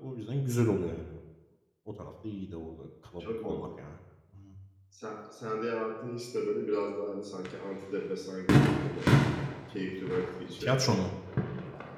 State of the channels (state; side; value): identical; both; correlation 1.00